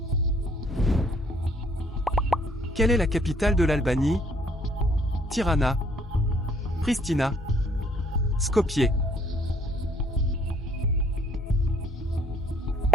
Quelle est la capitale de l'Albanie? Tirana, Pristina, Skopje.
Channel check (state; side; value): normal; both; correlation 0.64